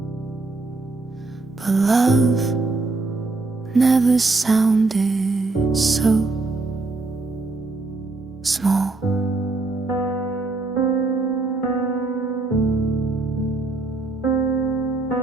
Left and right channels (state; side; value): quieter; left; 3.4 dB